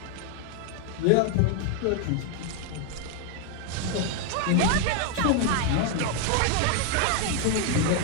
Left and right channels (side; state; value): both; different; correlation 0.01